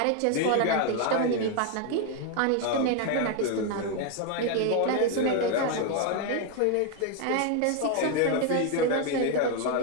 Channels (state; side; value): different; both; correlation 0.01